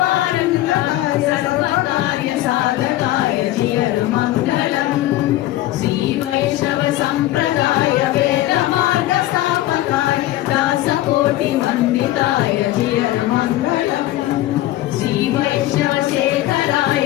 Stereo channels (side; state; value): right; quieter; 15.5 dB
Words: పారంగాయ సర్వకార్య సాధకాయ జియర్ మంగళం శ్రీ వైష్ణవ సంప్రదాయ వేద మార్గ స్థాపకాయ దాసకోటి వందితాయ జియర్ మంగళం శ్రీ వైష్ణవ శేఖరాయ